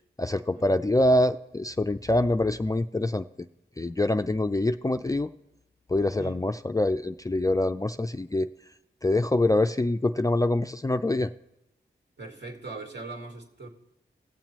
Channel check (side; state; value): both; normal; correlation 0.86